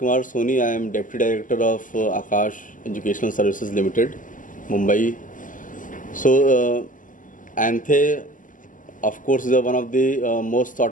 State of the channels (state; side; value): late; right; 0.38 ms